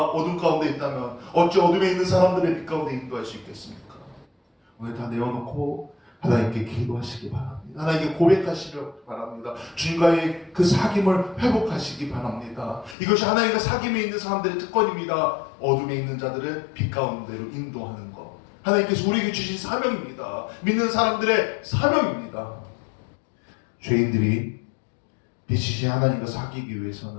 어둠 가운데 있다면 어찌 어둠에 있는 사람들의 빛 가운데 인도할 수 있겠습니까? 오늘 다 내어놓고 하나님께 기도하시기 바랍니다. 하나님께 고백하시기 바랍니다. 주님과의 그 사귐을 회복하시기 바랍니다. 이것이 하나님과 사귐에 있는 사람들의 특권입니다. 어둠에 있는 자들을 빛 가운데로 인도하는 것. 하나님께서 우리에게 주신 사명입니다. 믿는 사람들의 사명입니다. 죄인들이 빛이신 하나님과 사귀기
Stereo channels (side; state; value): right; drops out; at 13.0 s